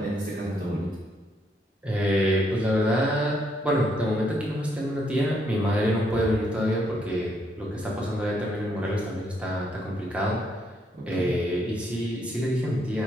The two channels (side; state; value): both; normal; correlation 0.73